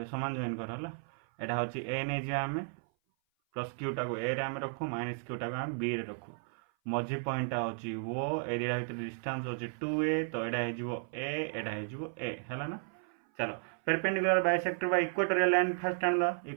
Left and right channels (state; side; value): silent; left; 55 dB below the other